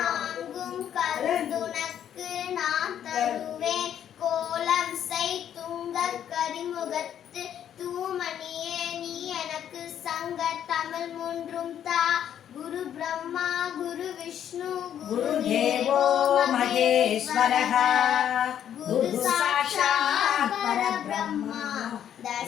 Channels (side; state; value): right; quieter; 9.8 dB